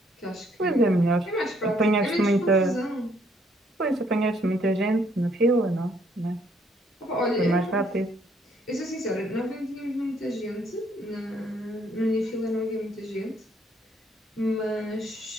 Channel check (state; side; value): normal; both; correlation 0.68